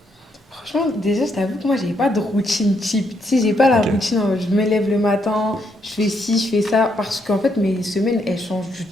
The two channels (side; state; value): both; normal; correlation 0.76